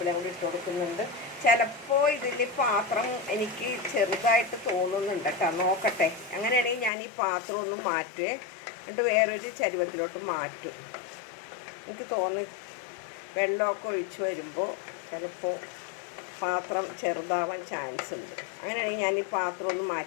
കൂടി ഇട്ട് കൊടുക്കുന്നുണ്ട്. ചിലപ്പോൾ ഇതിൽ പാത്രം എനിക്ക് ചെറുതായിട്ട് തോന്നുന്നുണ്ട് കേട്ടോ, നോക്കട്ടെ. അങ്ങനെയാണെങ്കിൽ ഞാൻ ഈ പാത്രം ഒന്ന് മാറ്റുവേ, എന്നിട്ട് വേറൊരു ചരുവത്തിലോട്ട് മാറ്റും. എനിക്ക് തോന്നി വെള്ളമൊക്കെ ഒഴിച്ച് വരുമ്പോൾ ചിലപ്പോൾ പാത്രം ചെറുതാവാൻ ചാൻസ് ഉണ്ട്. അങ്ങനെയാണെങ്കിൽ ഞാൻ ഈ പാത്രം ഒന്ന്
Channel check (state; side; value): drops out; right; at 6.9 s